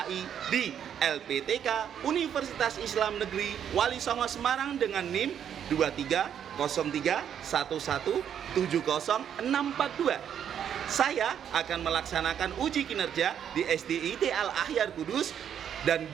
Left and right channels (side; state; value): left; quieter; 9.0 dB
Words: di LPTK Universitas Islam Negeri Wali Songo Semarang dengan NIM 2303117062. Saya akan melaksanakan uji kinerja di SDIT Al-Ahyar Kudus, dan